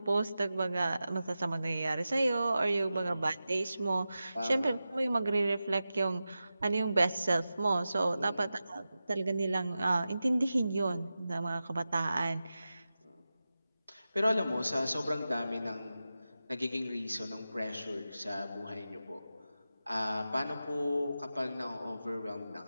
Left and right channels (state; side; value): inverted; both; correlation -0.93